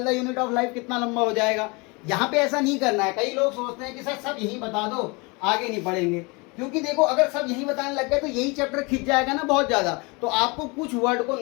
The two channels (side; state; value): right; quieter; 28.1 dB